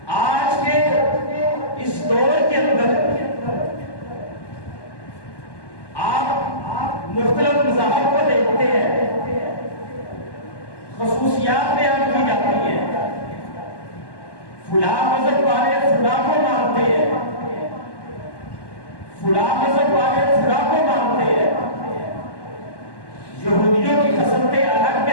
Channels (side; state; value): right; late; 1.1 ms